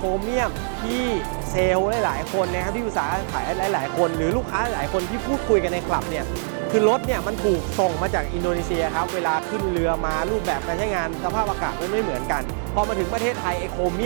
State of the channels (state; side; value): silent; left; 60 dB below the other